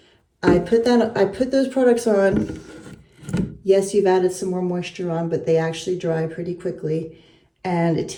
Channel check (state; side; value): identical; both; correlation 1.00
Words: I put those products on. Yes, you've added some more moisture on, but they actually dry pretty quickly. And it